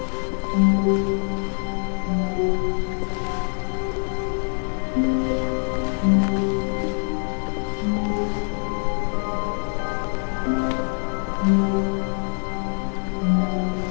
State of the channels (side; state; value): right; silent; 62 dB below the other